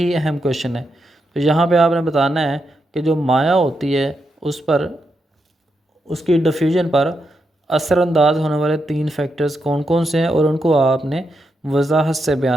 अहम क्वेश्चन है। तो यहाँ पे आपने बताना है कि जो माया होती है उस पर, उसकी डिफ्यूजन पर असरअंदाज होने वाले 3 फैक्टर्स कौन कौन से हैं और उनको आपने वजाहत से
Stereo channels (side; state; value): both; normal; correlation 0.84